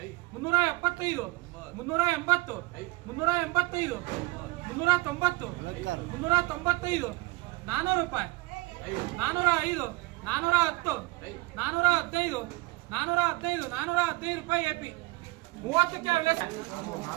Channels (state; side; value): quieter; left; 21.8 dB